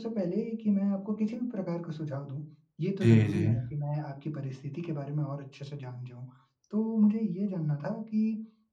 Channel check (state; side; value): identical; both; correlation 1.00